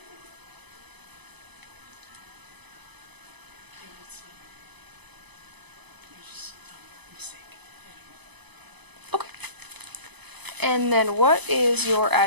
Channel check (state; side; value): late; left; 0.99 ms